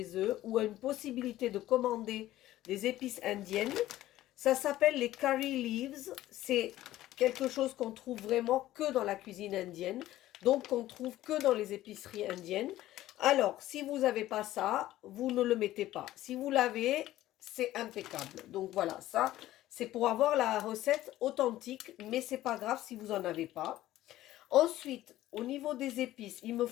eux ou une possibilité de commander des épices indiennes, ça s'appelle les curry leaves. C'est quelque chose qu'on trouve vraiment que dans la cuisine indienne, donc qu'on trouve que dans les épiceries indiennes. Alors, si vous n'avez pas ça, vous ne le mettez pas. Si vous l'avez, c'est impeccable. Donc voilà, ça, c'est pour avoir la recette authentique, mais c'est pas grave si vous n'en avez pas. Ensuite, au niveau des épices, il me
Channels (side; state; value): right; quieter; 14.8 dB